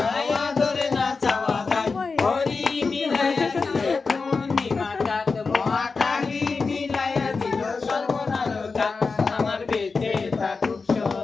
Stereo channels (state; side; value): quieter; right; 4.5 dB